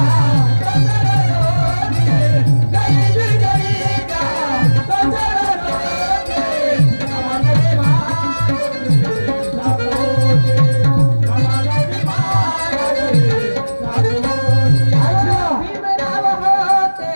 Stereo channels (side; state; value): both; inverted; correlation -1.00